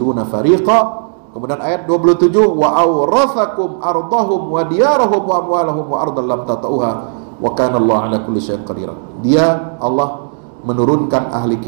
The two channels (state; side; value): silent; left; digital silence